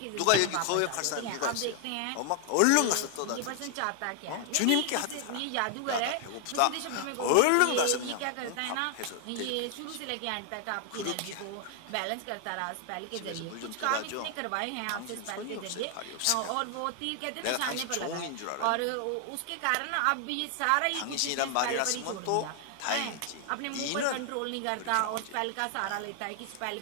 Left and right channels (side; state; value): both; different; correlation 0.00